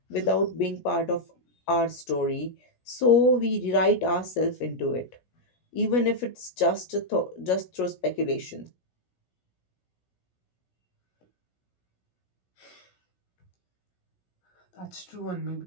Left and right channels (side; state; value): right; late; 17 ms